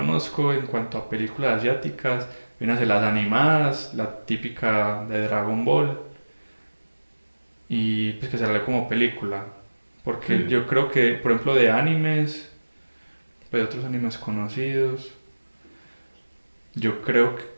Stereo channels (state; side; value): inverted; both; correlation -1.00